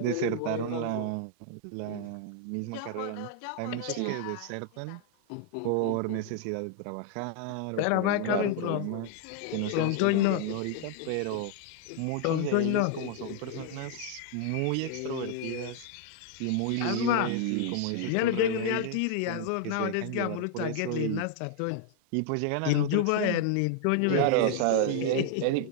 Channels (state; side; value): different; both; correlation 0.00